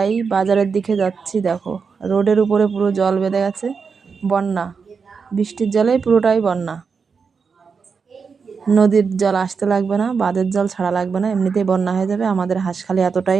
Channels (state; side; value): quieter; left; 5.5 dB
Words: বাজারের দিকে যাচ্ছি, দেখো রোডের উপরে পুরো জল বেঁধে গেছে, বন্যা, বৃষ্টির জলে পুরোটাই বন্যা। নদীর জল আসতে লাগবে না, বাঁধের জল ছাড়া লাগবে না, এমনিতেই বন্যা হয়ে যাবে। আমাদের হাঁসখালি